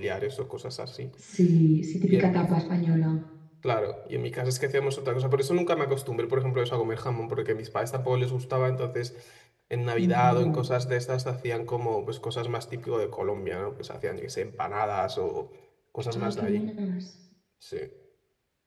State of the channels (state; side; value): identical; both; correlation 1.00